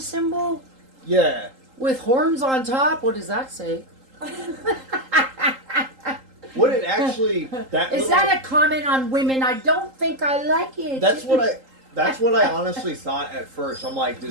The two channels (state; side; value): late; left; 3.8 ms